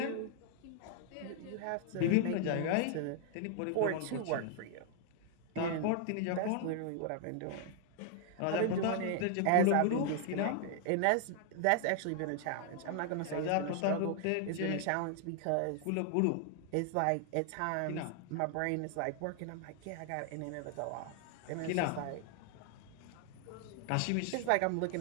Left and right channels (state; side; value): different; both; correlation 0.00